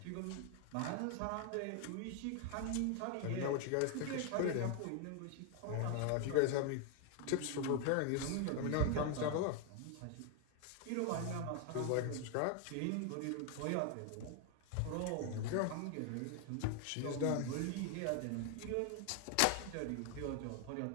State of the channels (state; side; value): different; both; correlation 0.01